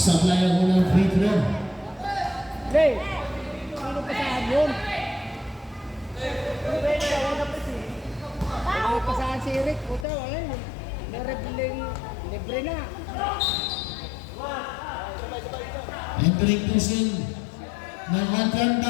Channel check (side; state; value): right; drops out; at 10.1 s